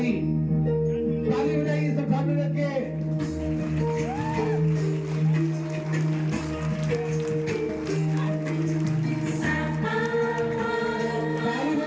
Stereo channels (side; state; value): both; identical; correlation 1.00